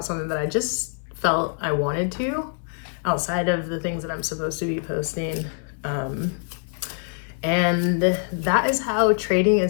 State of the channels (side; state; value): right; silent; 62 dB below the other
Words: something that I just felt I wanted to, outside of the things that I'm supposed to be posting. And that is how trading